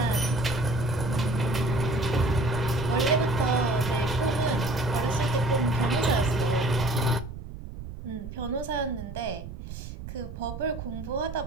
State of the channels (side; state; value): right; noise; rumble, 10 dB below the sound